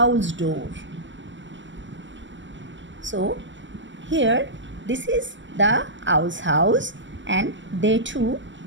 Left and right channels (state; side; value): late; left; 0.54 ms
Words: door. So here this is the owl's house and they too